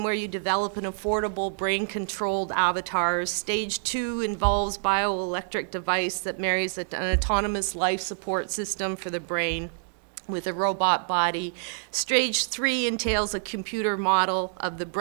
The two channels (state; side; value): silent; left; digital silence